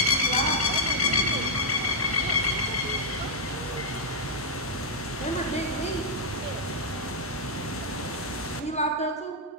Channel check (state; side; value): normal; both; correlation -0.05